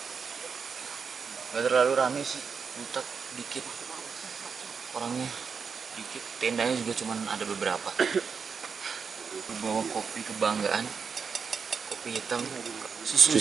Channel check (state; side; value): quieter; left; 5.8 dB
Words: Gak terlalu rame sih, Butak dikit. Orangnya dikit, tendanya juga cuma ada beberapa. Bawa kopi kebanggaan. Kopi hitam. Susi